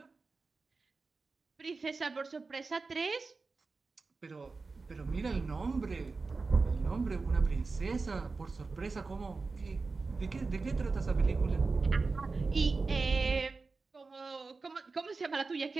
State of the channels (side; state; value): left; quieter; 4.1 dB